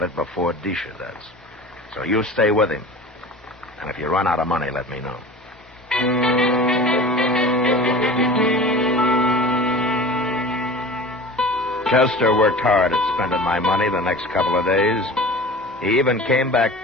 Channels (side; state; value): both; normal; correlation 0.37